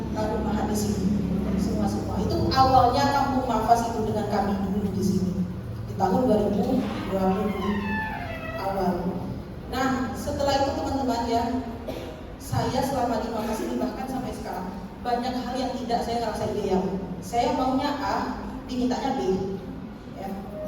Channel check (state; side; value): identical; both; correlation 1.00